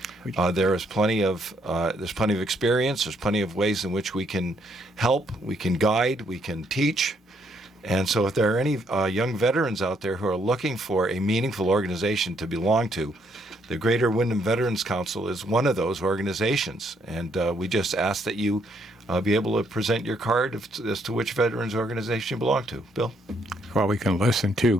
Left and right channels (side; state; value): both; normal; correlation 0.72